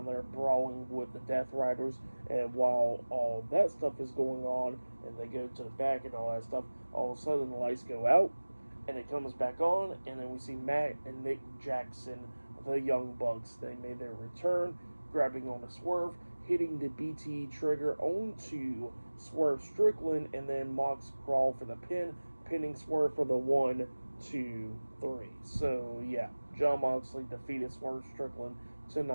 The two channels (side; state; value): both; inverted; correlation -1.00